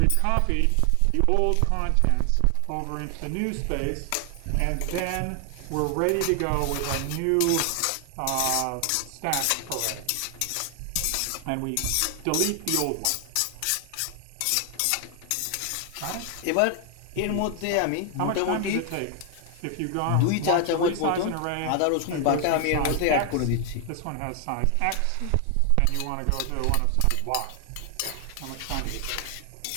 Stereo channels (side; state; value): both; different; correlation 0.00